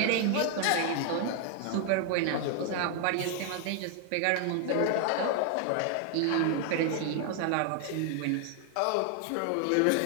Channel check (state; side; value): different; both; correlation 0.00